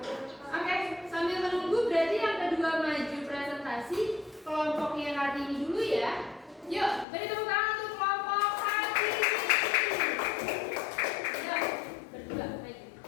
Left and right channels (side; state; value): right; drops out; at 7.1 s